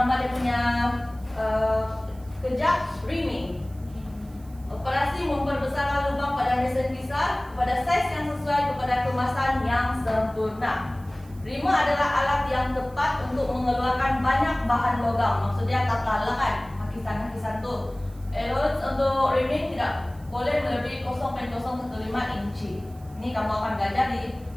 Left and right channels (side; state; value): right; noise; hiss, 27 dB below the sound